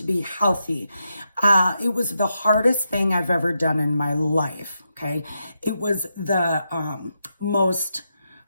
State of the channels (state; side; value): inverted; both; correlation -0.85